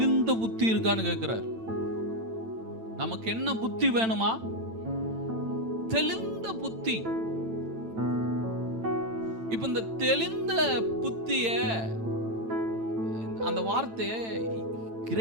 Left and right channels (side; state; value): left; late; 8.9 ms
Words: புத்தி இருக்கான்னு கேட்கிறார். நமக்கு என்ன புத்தி வேணுமா? தெளிந்த புத்தி. இப்ப இந்த தெளிந்த புத்திய, அந்த வார்த்தைய